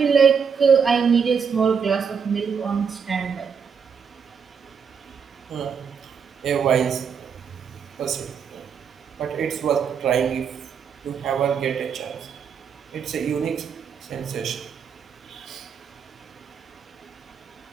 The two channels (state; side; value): quieter; left; 6.5 dB